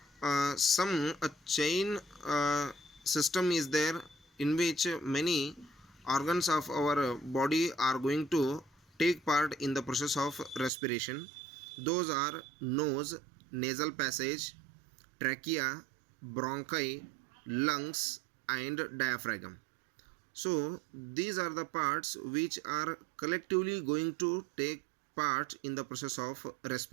some a chain system is there in which many organs of our body are going to take part in the process of respiration. Those are nose, nasal passage, trachea, bronchi, lungs, and diaphragm. So these are the parts which are collectively going to take part in the process of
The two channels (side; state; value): left; drops out; at 10.7 s